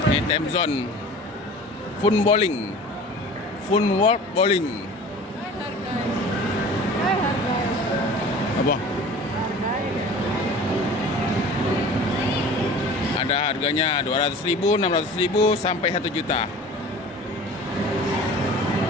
Ini time zone. Fun bowling. Fun world bowling. Apa? Ada harganya 200.000, 600.000 sampai 1 juta.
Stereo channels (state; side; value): normal; both; correlation 0.42